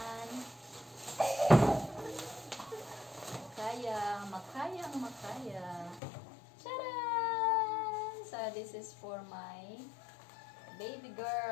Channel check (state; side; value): drops out; right; at 6.0 s